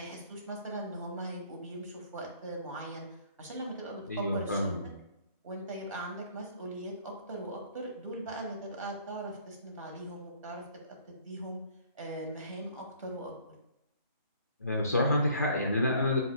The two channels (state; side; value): inverted; both; correlation -0.57